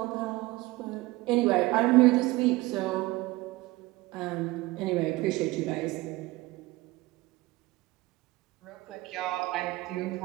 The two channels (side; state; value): left; quieter; 20.2 dB